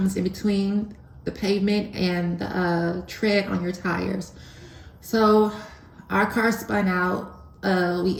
in between the pavement and the tread on your tires. So our car spun out. We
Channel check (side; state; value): both; identical; correlation 1.00